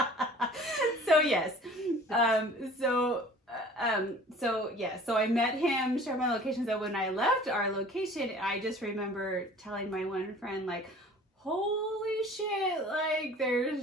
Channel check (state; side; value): normal; both; correlation 0.47